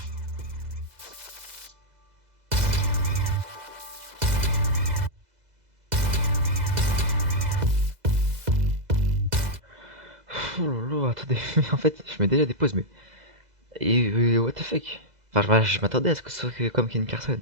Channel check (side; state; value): left; late; 2.0 ms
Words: Oh lolo, attendez, mais en fait, je mets déjà des pauses, mais. Et what the fuck? Enfin, je m'attendais à ce que ce soit comme Ken Carson.